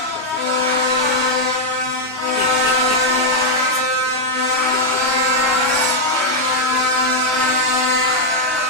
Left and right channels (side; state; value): both; normal; correlation -0.02